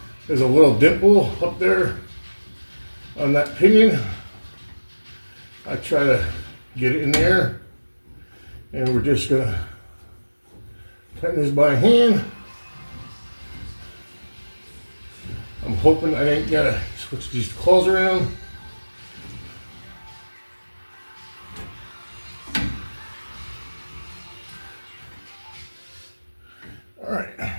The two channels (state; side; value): inverted; both; correlation -1.00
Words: There's a little dimple up there on that pinion. I try to get it in there, and we're just gonna tighten this by hand. I'm hoping I ain't gotta switch these claws around. All right.